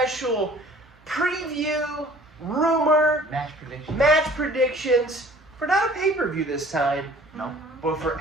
preview, rumor, match predictions for not a pay-per-view this time, no, but for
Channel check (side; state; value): both; normal; correlation 0.50